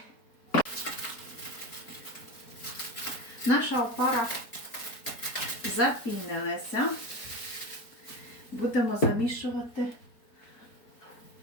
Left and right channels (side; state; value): right; late; 4.3 ms